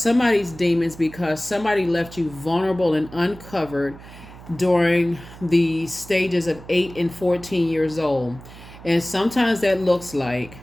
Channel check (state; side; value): noise; right; hum, 18 dB below the sound